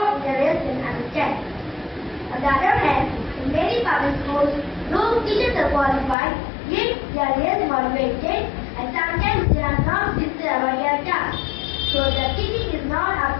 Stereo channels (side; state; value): right; drops out; at 6.2 s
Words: and understanding. On the other hand, in many public schools, those teachers are qualified, yet they are less motivated and sometimes they are not sincere about their task. So the teaching is not